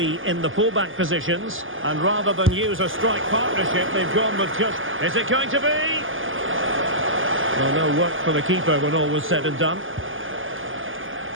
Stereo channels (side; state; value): left; late; 0.58 ms